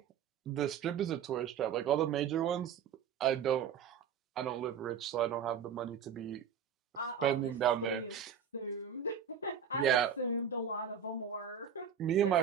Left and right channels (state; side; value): quieter; left; 7.7 dB